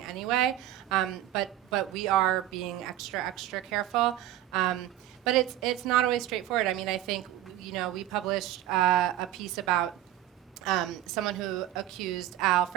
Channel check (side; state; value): left; quieter; 13.1 dB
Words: anyway, but we are being extra careful. But it's not always straightforward. I mean, I think, we published a piece about someone who accused Al